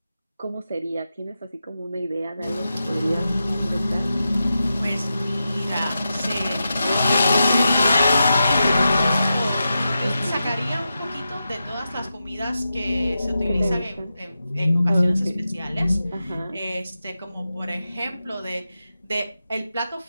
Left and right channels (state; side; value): inverted; both; correlation -0.90